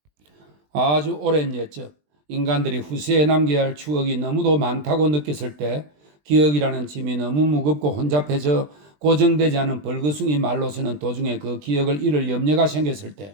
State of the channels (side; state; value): left; late; 20 ms